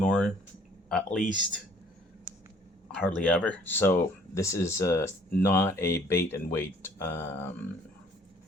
at least hardly ever. So this is not a bait and wait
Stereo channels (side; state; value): both; normal; correlation 0.58